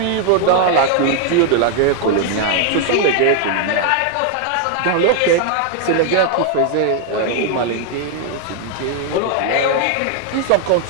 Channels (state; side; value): different; both; correlation 0.00